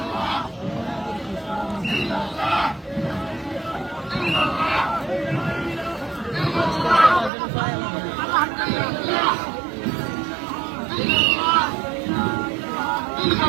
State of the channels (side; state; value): left; drops out; at 7.3 s